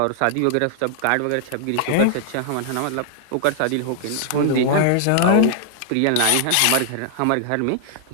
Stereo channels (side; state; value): both; different; correlation 0.00